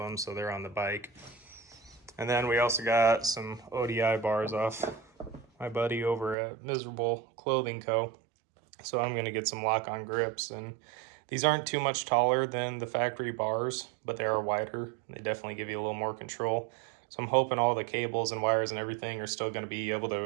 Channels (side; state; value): left; drops out; at 6.4 s